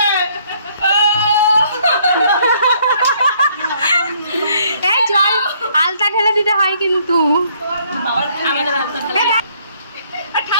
জল আলতা ঢেলে দিতে হয় কিন্তু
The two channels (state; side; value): inverted; both; correlation -0.65